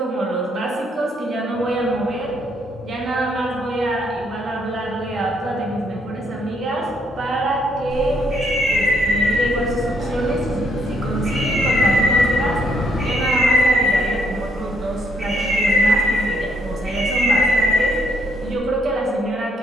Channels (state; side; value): normal; both; correlation 0.72